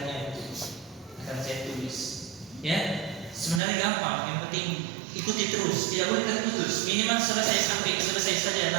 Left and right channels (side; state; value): left; drops out; at 3.6 s